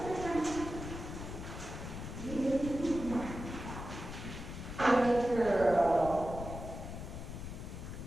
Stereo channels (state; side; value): noise; left; rumble, 8 dB below the sound